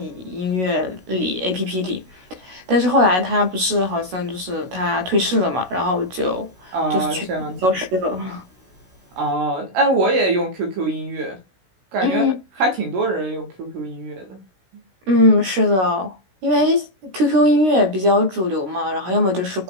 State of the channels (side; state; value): left; late; 16 ms